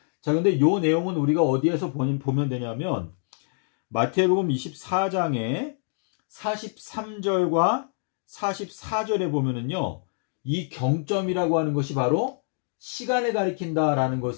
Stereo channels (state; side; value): silent; right; digital silence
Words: 자, 근데 요 내용은 우리가 어디에서 보면 되냐면 마태복음 24장에 43절과 44절에 보면은요, 이 경점이라고 하는 것이 바로 시간을 가리킨다라는